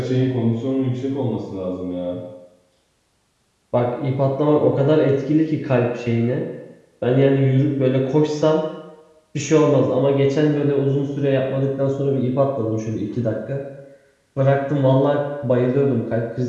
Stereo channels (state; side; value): identical; both; correlation 1.00